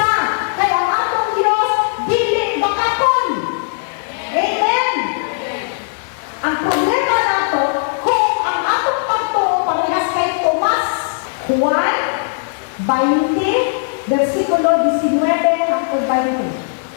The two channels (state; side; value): silent; right; digital silence